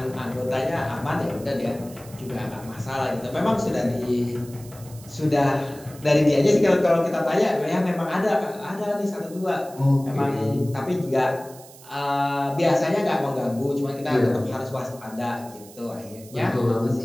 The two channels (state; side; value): noise; right; hiss, 20 dB below the sound